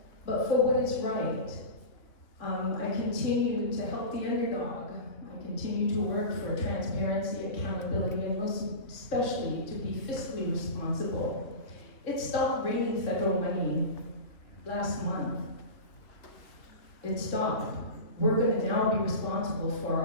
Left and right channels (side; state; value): right; late; 2.8 ms